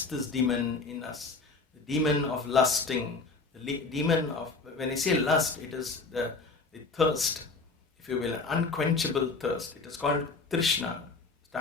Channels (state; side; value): quieter; right; 3.9 dB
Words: this demon in us, the demon of lusting, the demon of, when I say lust, it is the thirst, if you will, an unquenchable thirst. It is called Trishna.